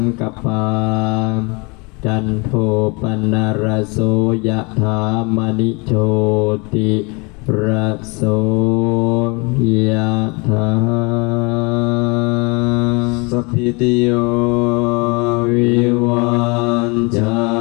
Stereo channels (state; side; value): quieter; right; 29.0 dB